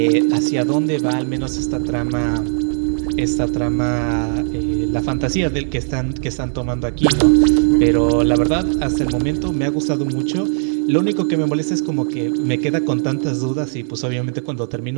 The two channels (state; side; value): silent; left; digital silence